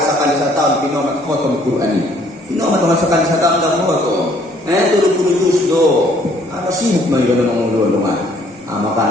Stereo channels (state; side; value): normal; both; correlation 0.62